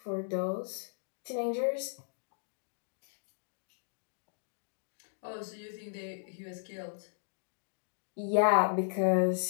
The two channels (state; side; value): silent; right; digital silence